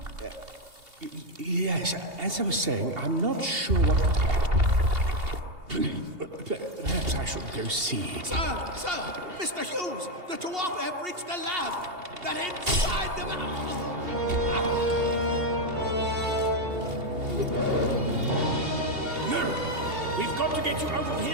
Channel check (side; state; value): left; late; 2.8 ms